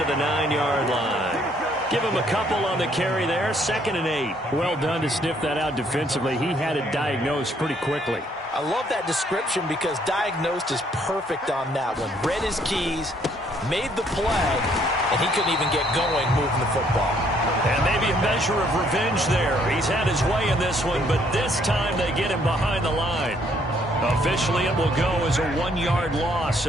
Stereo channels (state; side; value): normal; both; correlation 0.66